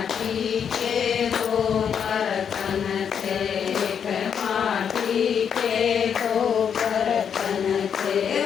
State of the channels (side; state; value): right; quieter; 7.6 dB